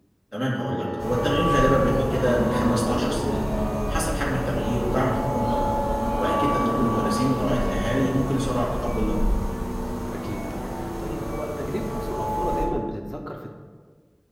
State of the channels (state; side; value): identical; both; correlation 1.00